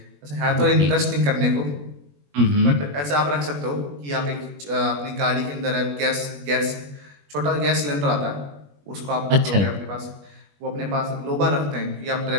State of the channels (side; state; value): left; late; 21 ms